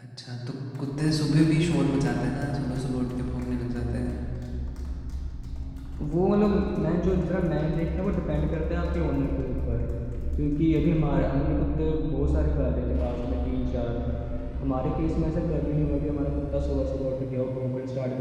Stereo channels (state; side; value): identical; both; correlation 1.00